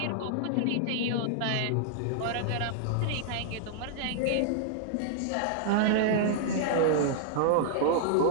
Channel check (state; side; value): different; both; correlation -0.01